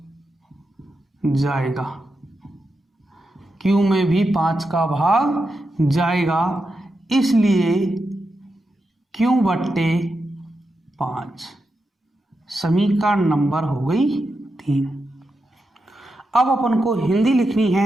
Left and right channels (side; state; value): both; normal; correlation 0.87